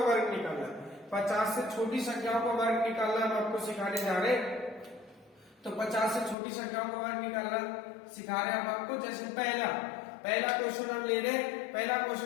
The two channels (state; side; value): drops out; right; at 6.4 s